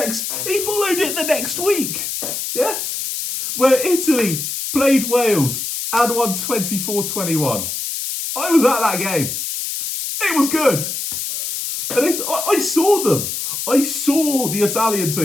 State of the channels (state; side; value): noise; left; hiss, 4 dB below the sound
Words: next week. Yeah? Where Italy played Wales and won 24-21. I was at that game. It was good. And I saw them. I saw the Italian